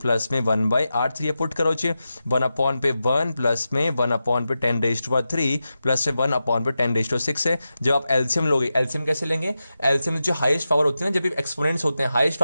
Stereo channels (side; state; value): both; inverted; correlation -0.91